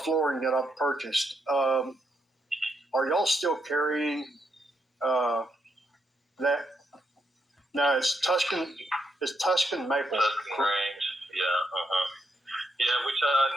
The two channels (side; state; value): both; normal; correlation 0.80